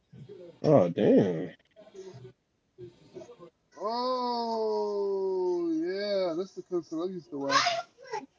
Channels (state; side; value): identical; both; correlation 1.00